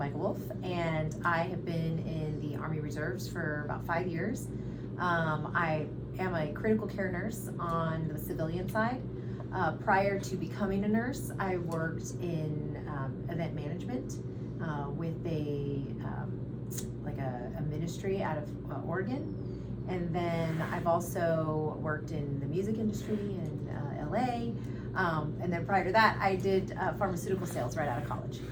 and I have been in the Army Reserves for about 5 years. I am a critical care nurse on the civilian side. Prior to becoming a nurse, I worked in event management with a ministry out of Oregon. And then I've also worked in the music industry in LA. And then prior to that, I did pharmaceutical sales right out of college.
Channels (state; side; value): identical; both; correlation 1.00